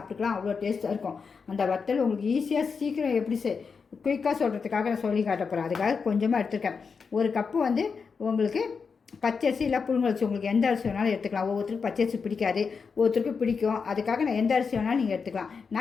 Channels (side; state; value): right; quieter; 5.4 dB